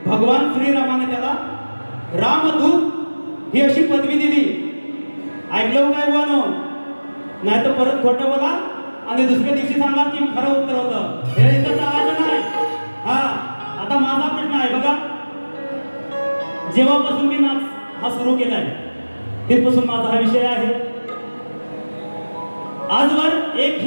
भगवान श्रीरामाने त्याला रामदूत ही अशी पदवी दिली. ऐकलं काय बोनो? नाही तर परत खोटं बोला आणि दुसऱ्या दिवशी सांगा की खरं उत्तर होतं. हे इथं चालायचं नाही. हा, आता माझा प्रश्न आहे बघा. जेव्हापासून मी नाच हा सुरू केलाय तिथपासून माझा हा विषय आहे. आजवर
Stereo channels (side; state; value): both; inverted; correlation -1.00